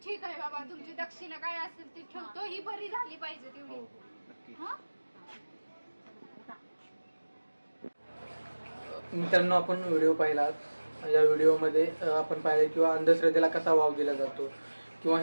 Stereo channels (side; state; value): both; inverted; correlation -1.00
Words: ठीक आहे बाबा, तुमची दक्षिणा काय असेल ती ठेवतो. ही बरी झाली पाहिजे हो तेवढी. हो नक्की. हा? मित्रांनो, आपण व्हिडिओ पाहिला. या व्हिडिओमध्ये आपण पाहिलं किंवा अंधश्रद्धेला कसा वाव दिला जातो, किंवा